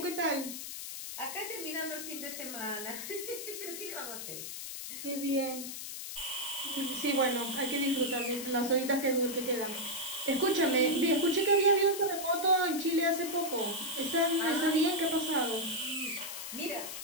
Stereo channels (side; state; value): left; noise; hiss, 8 dB below the sound